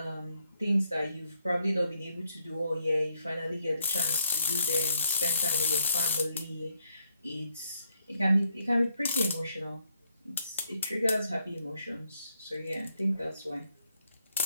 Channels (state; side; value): inverted; both; correlation -0.75